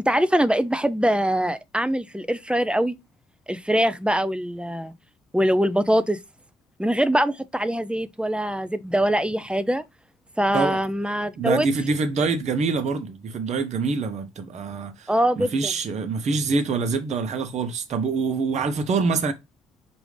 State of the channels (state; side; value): normal; both; correlation 0.82